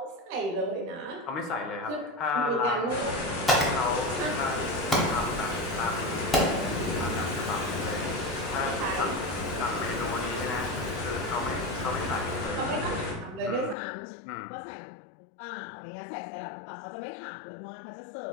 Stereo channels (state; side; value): drops out; right; at 13.8 s